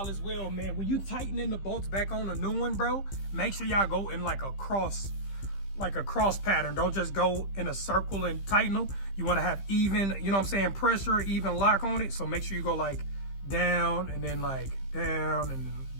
as well, man. When you tightening the bolts back on a new one, bro, make sure y'all go in like a cross pattern. Don't just go in a circle and tighten them. You want to have even, you know what I'm saying, pressure, even lock on it. So make sure you go like down and then like down and then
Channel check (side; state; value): right; late; 15 ms